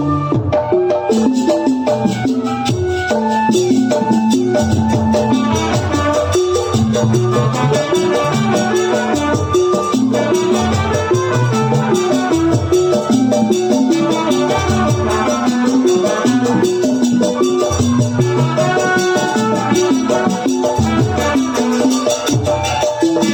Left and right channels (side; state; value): both; identical; correlation 1.00